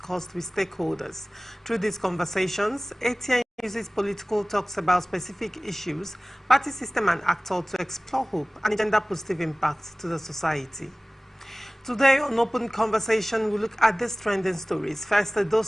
with stakeholders. Through these conversations, ATN uses political talks about specific issues, party system and actor to explore hope and gender-positive impacts to the society. Today on Open Conversation, we look at these trending stories. First, Edo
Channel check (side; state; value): both; normal; correlation 0.98